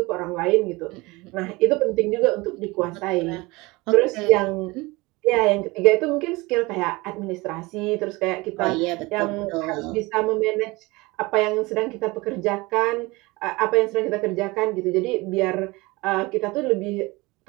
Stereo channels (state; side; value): quieter; left; 23.1 dB